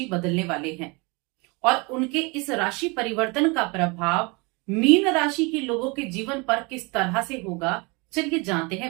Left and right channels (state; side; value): quieter; left; 28.1 dB